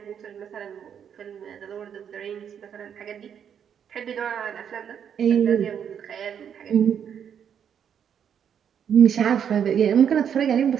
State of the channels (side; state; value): left; quieter; 8.3 dB